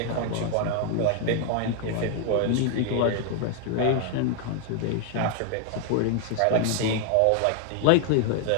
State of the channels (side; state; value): both; different; correlation 0.01